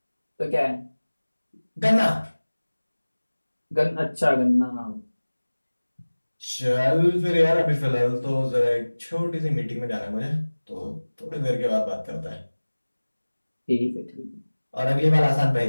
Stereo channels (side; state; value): both; inverted; correlation -1.00